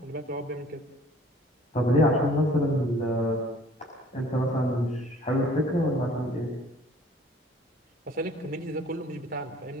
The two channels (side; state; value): both; normal; correlation 0.54